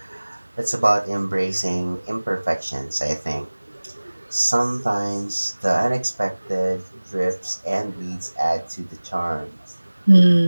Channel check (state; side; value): inverted; both; correlation -1.00